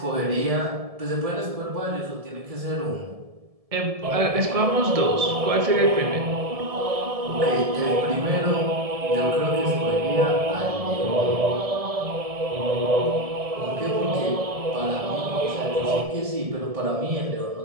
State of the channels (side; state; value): left; late; 1.7 ms